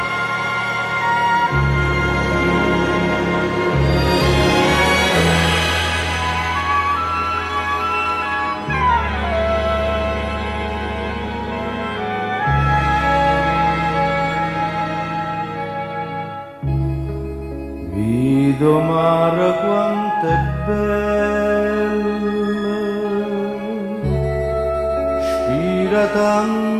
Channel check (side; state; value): both; identical; correlation 1.00